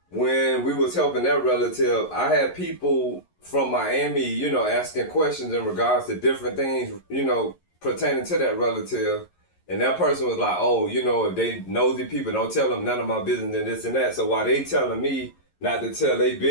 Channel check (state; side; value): late; right; 11 ms